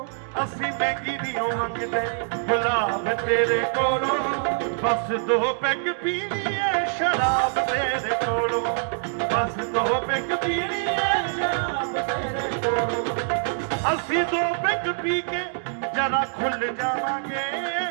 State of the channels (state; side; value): silent; left; digital silence